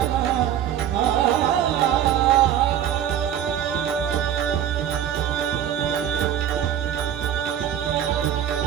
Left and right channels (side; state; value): left; quieter; 10.1 dB